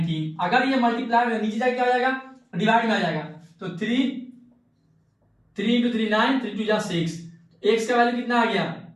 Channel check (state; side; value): identical; both; correlation 1.00